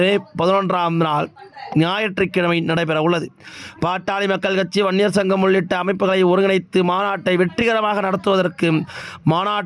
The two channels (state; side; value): identical; both; correlation 1.00